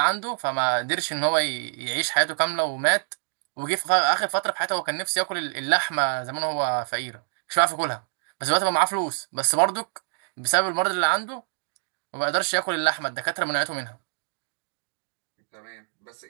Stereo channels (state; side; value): silent; left; digital silence